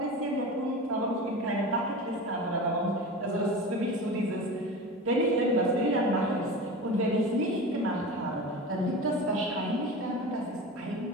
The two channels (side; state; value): both; normal; correlation 0.30